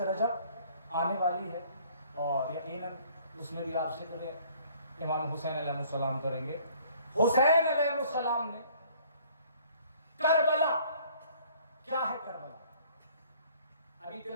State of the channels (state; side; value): inverted; both; correlation -0.57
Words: رجب آنے والی ہے، اور یقیناً اس میں بھی آپ ذکر امام حسین علیہ السلام کریں گے۔ حسین علیہ السلام نے کربلا، کیا ہے کربلا؟ ابھی